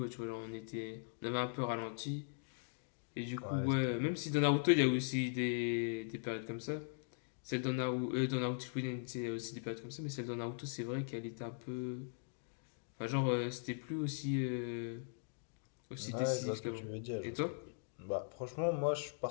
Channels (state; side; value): silent; right; digital silence